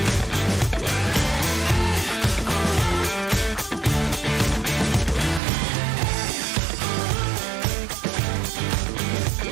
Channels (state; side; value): drops out; left; at 5.4 s